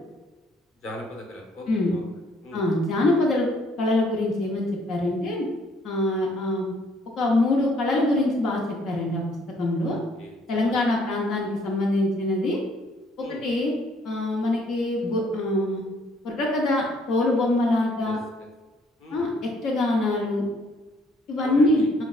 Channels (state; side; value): normal; both; correlation 0.64